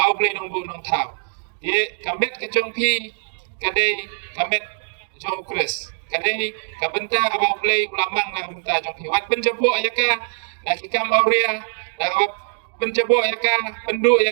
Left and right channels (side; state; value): left; silent; digital silence